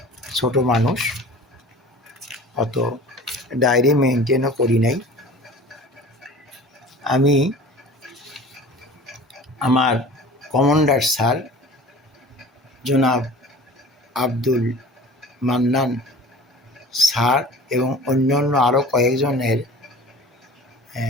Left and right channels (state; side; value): normal; both; correlation 0.41